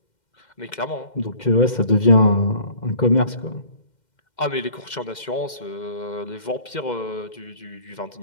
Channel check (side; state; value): right; late; 2.1 ms